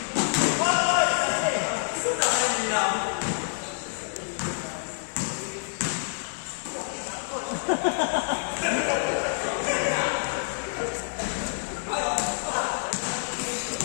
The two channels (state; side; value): silent; right; 60 dB below the other